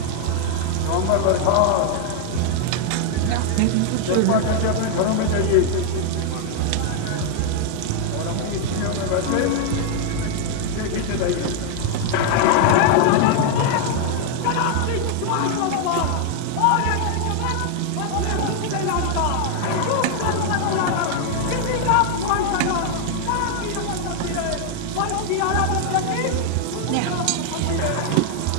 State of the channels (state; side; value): different; both; correlation 0.00